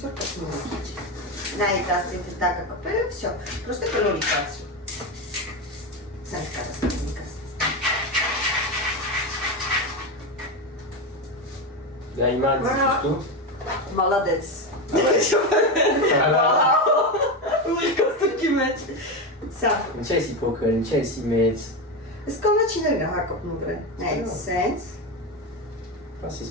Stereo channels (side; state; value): both; normal; correlation 0.15